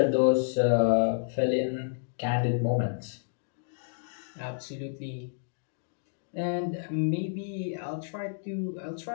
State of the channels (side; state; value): right; silent; digital silence